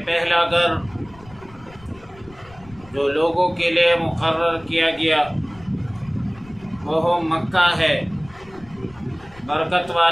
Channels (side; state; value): left; noise; rumble, 23 dB below the sound